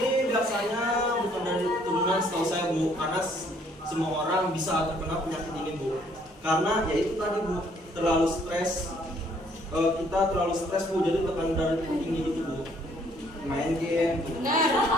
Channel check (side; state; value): both; normal; correlation 0.64